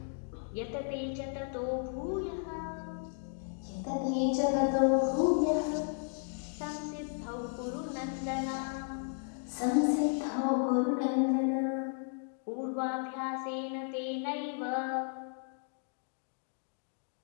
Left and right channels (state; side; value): silent; right; 55 dB below the other